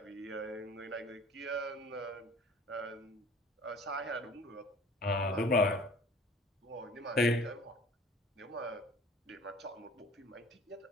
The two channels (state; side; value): normal; both; correlation 0.48